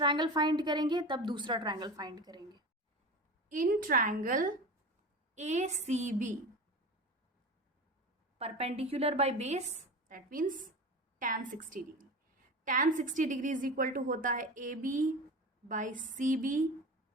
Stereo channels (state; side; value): normal; both; correlation 0.30